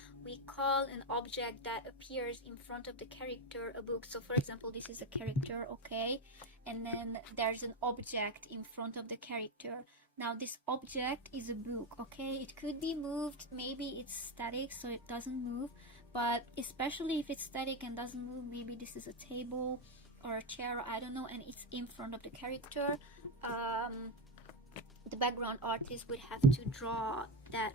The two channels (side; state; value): both; normal; correlation 0.12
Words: we call an object that appears in front of the character a book. So for example, this is a character, okay, and then there's an object in front of the character. Now this object is a book, okay? It could be moved, maybe it's static so it doesn't move, but especially if it's static and doesn't move, maybe this is a table or a chair, I don't know, and it's in front of the character. The background artist would have to draw that